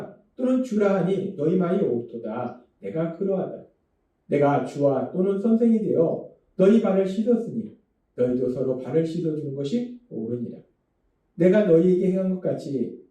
또는 주라 하니 너희 말이 옳도다. 내가 그러하다. 내가 주와 또는 선생이 되어 너희 발을 씻었으니 너희도 서로 발을 씻어주는 것이 옳으니라. 내가 너희에게 행한 것 같이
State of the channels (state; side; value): identical; both; correlation 1.00